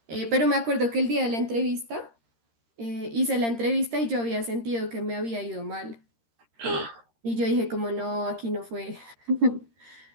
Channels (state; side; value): late; left; 13 ms